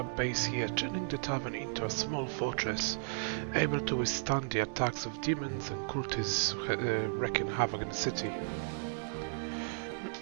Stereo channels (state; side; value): silent; left; digital silence